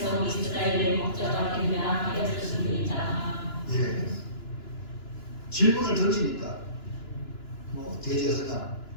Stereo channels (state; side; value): late; right; 2.9 ms